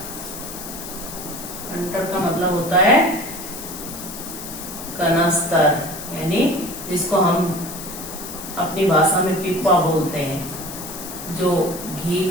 कैंटर का मतलब होता है कनस्तर, यानी जिसको हम अपनी भाषा में पिप्पा बोलते हैं, जो घी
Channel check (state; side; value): noise; left; hiss, 10 dB below the sound